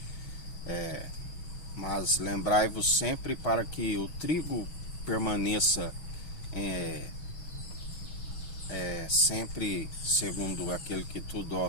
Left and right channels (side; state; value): right; late; 6.3 ms